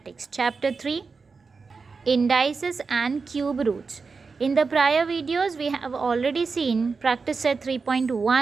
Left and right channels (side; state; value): left; quieter; 4.7 dB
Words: Chapter 3 Indices and Cube Roots. In the prior videos we have already seen practice set